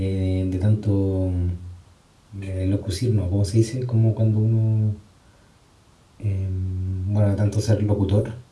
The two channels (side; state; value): both; identical; correlation 1.00